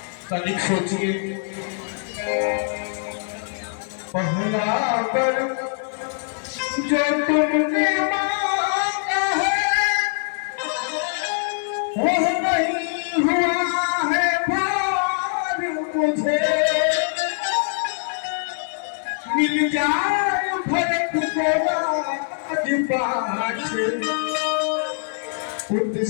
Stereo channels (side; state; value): right; silent; 61 dB below the other